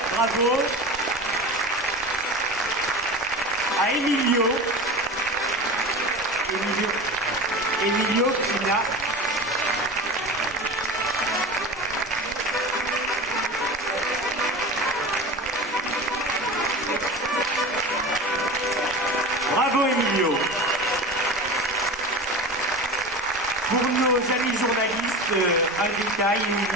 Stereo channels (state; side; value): normal; both; correlation 0.30